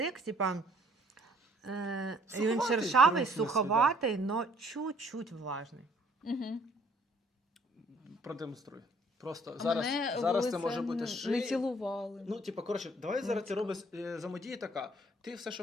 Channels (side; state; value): both; normal; correlation 0.61